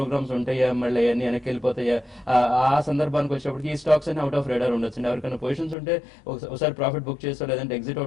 ఉంటాయా, మళ్ళీ అన్ని వెనక్కి వెళ్ళిపోతాయా, ఆ సందర్భానికి వచ్చేటప్పటికి ఈ స్టాక్స్ అన్ని అవుట్ ఆఫ్ రేడార్ ఉండొచ్చు. ఎవరికైనా పొజిషన్స్ ఉంటే ఒకసారి ప్రాఫిట్ బుక్ చేస్తా, లేదంటే ఎగ్జిట్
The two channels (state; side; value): drops out; right; at 5.8 s